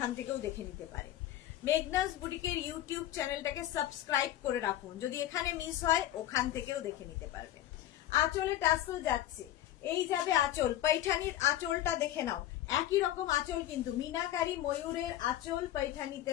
থেকেও দেখে নিতে পারে। মেঘনাস বুটিকের ইউটিউব চ্যানেলটাকে সাবস্ক্রাইব করে রাখুন, যদি এখানে মিস হয় ওখান থেকেও দেখে নিতে পারবেন। আঁচলে টাসেল যাচ্ছে, এই যাবে আঁচল, পৈঠানির আঁচলটা দেখে নাও, একই রকম আঁচল কিন্তু, মিনাকারি ময়ূরের আঁচল পৈঠানিতে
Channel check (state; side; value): quieter; right; 13.2 dB